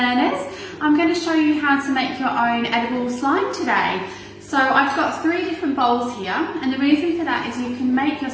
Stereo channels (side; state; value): both; identical; correlation 1.00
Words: I'm going to show you how to make your own edible slime today. So I've got 3 different bowls here, and the reason for that is you can make your